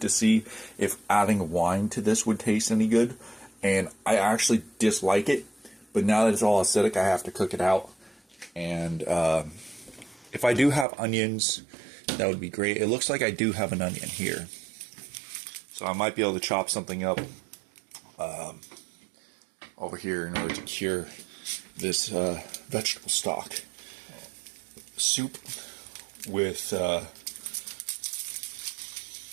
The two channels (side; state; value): left; drops out; at 10.9 s